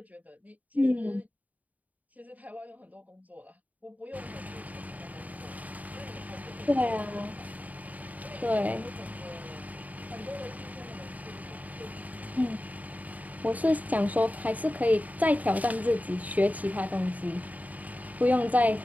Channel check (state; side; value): late; left; 0.074 ms